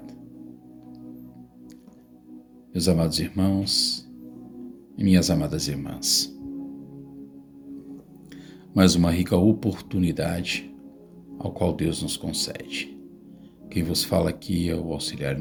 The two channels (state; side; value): identical; both; correlation 1.00